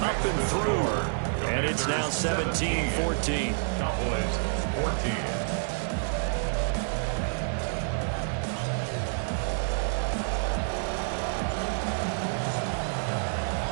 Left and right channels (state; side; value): silent; left; digital silence